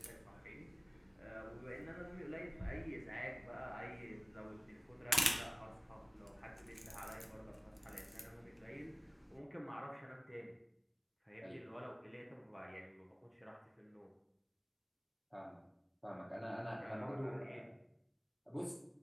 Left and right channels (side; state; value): both; identical; correlation 1.00